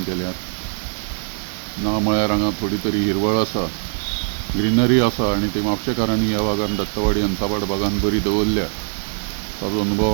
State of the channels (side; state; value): left; silent; digital silence